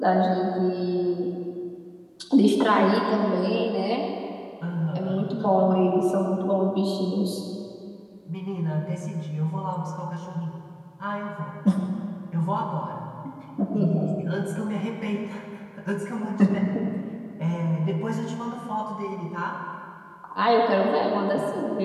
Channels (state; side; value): identical; both; correlation 1.00